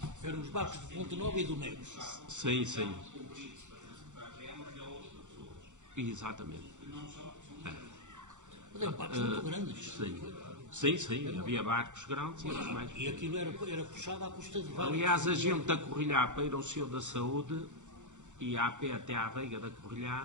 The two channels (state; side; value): late; left; 0.85 ms